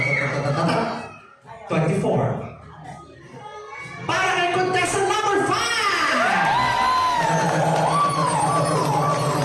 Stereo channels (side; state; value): both; identical; correlation 1.00